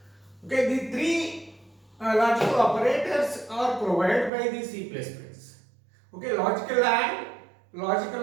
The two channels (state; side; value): drops out; left; at 4.3 s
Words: Okay, the three logical operators are provided by the C++. Okay, logical and